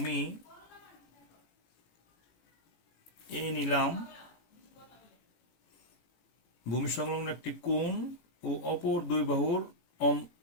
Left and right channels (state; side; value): late; right; 18 ms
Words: এ নিলাম, ভূমি সংলগ্ন একটি কোণ ও অপর দুই বাহুর